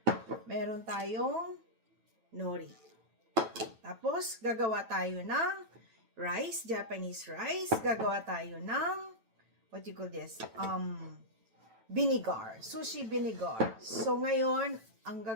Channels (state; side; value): late; left; 9.1 ms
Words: Meron tayong nori. Tapos gagawa tayo ng rice, Japanese rice. Gagawa tayo ng what you call this? Vinegar. Sushi vinegar. So, ngayon, ang